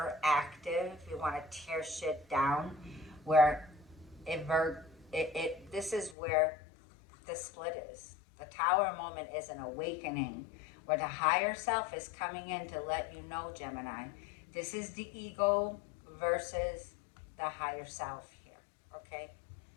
We want to tear shit down. Where this is where the split is. The tower moment is an awakening where the higher self is coming in to let you know, Gemini, this is the ego versus the higher self here, okay?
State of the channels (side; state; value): right; drops out; at 6.2 s